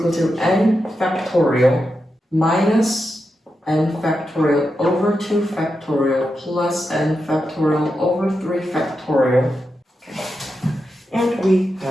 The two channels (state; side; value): normal; both; correlation 0.88